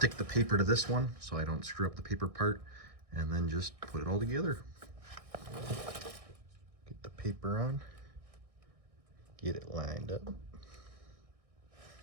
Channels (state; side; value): late; left; 1.6 ms